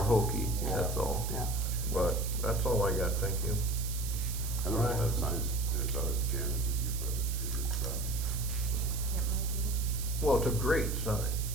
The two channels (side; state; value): right; noise; hiss, 8 dB below the sound